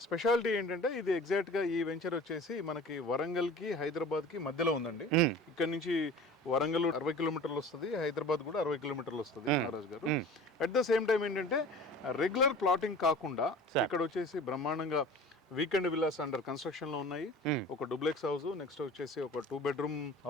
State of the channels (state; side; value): normal; both; correlation 0.40